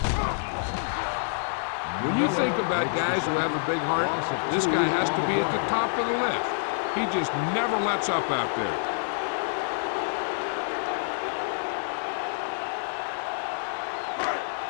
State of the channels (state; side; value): silent; right; digital silence